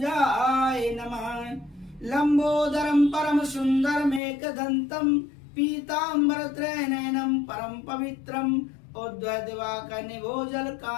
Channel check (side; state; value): right; drops out; at 4.2 s